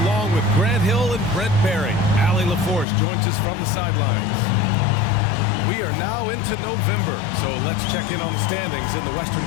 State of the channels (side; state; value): right; drops out; at 2.9 s